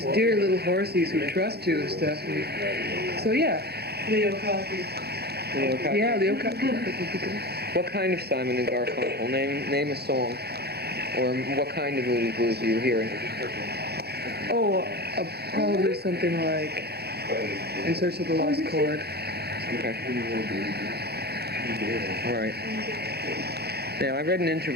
dear little horsies who trust you and stuff. So yeah. Leo Cosby. Yeah, Leo Cosby. What kind of Simon and Garfunkel? Name a song. Or what kind of Moody Blues are you hearing? Oh, probably something like In Search of the Lost Chord. Okay. All right. Now, I read an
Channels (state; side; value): late; left; 0.47 ms